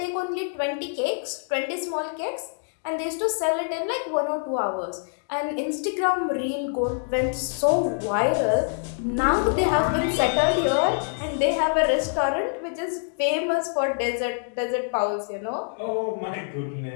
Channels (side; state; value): right; silent; digital silence